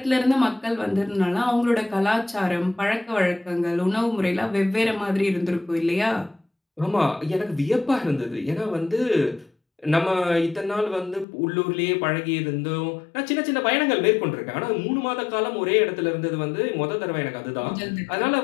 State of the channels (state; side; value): drops out; right; at 11.2 s